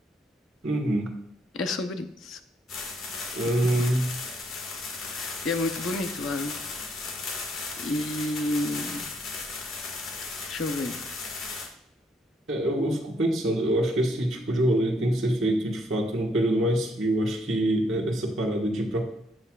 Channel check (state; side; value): normal; both; correlation 0.71